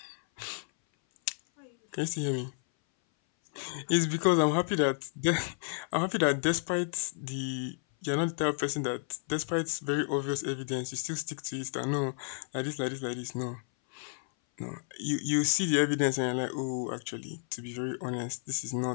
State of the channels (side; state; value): right; silent; 57 dB below the other